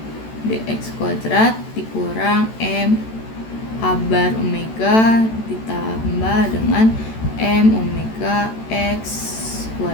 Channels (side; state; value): right; late; 14 ms